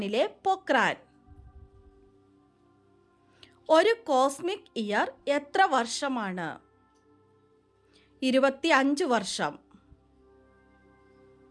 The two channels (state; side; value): identical; both; correlation 1.00